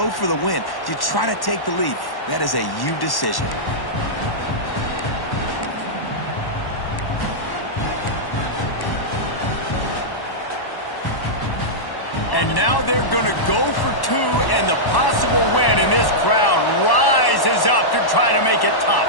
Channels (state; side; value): late; right; 1.1 ms